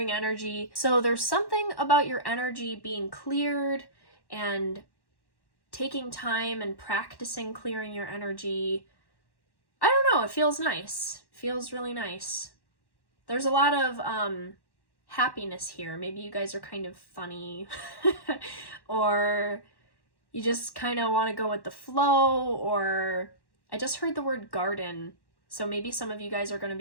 energy. So there's something about your energy being cleared and taking time and practicing clearing your energy. I don't know, it feels nice. It feels really nice. There's a lot of happiness here. Maybe you guys are kind of funny or you just kind of want to go with the flow, or I just heard the word garden. So maybe some of you guys are going to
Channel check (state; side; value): late; right; 1.1 ms